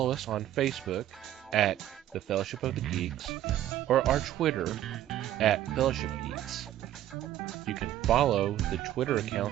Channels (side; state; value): left; quieter; 12.6 dB